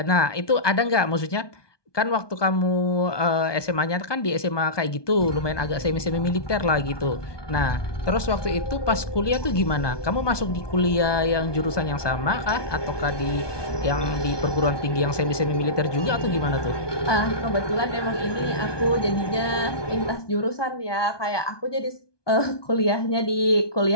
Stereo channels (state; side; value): late; right; 1.2 ms